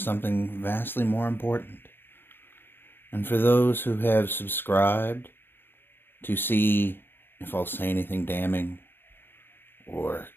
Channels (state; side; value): late; right; 0.10 ms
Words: vastly more important. And for those who have subscribed to see if I'll say anything damning or